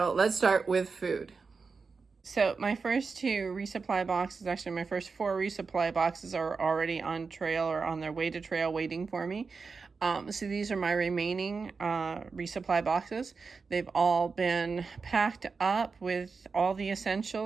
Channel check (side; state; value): left; quieter; 4.8 dB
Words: let's start with food. So my first two resupply boxes, actually my first four resupply boxes are already on trail or on their way to trail waiting for me. So these are my remaining resupply boxes. They've all been packed up with all the